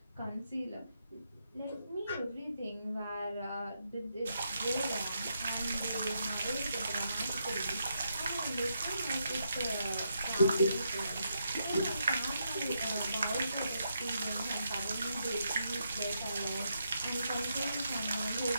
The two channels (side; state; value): both; inverted; correlation -0.80